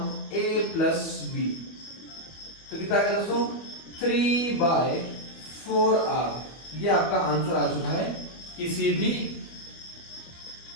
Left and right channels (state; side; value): late; right; 24 ms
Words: A plus B। तो कितना आ गया दोस्तों 3/4R। ये आपका आंसर आ चुका है किसी भी